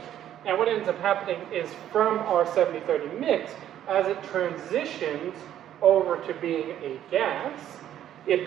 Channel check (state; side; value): quieter; left; 11.2 dB